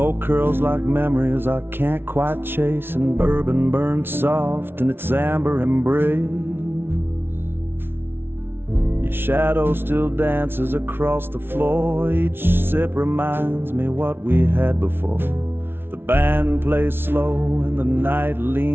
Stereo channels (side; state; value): left; late; 0.11 ms